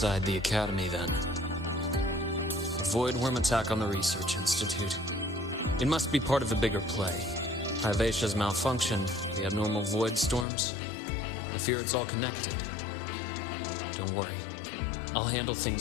the Academy, then. void worm attack on the Research Institute. It must be part of a bigger play. Hyvatia's malfunction, the abnormal void storms. I fear it's all connected. Don't worry. I'll handle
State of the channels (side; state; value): right; drops out; at 10.5 s